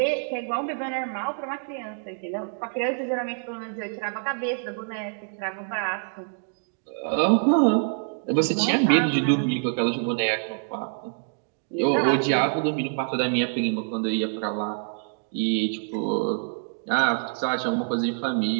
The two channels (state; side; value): silent; left; 59 dB below the other